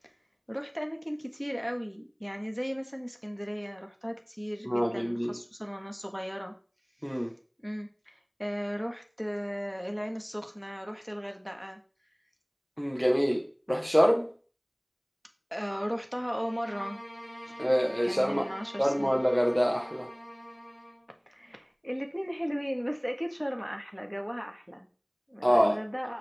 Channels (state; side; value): identical; both; correlation 1.00